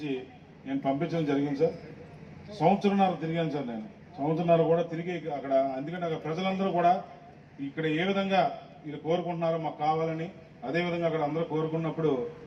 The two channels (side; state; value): both; identical; correlation 1.00